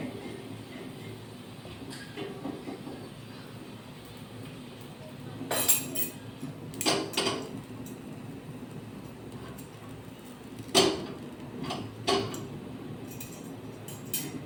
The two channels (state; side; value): identical; both; correlation 1.00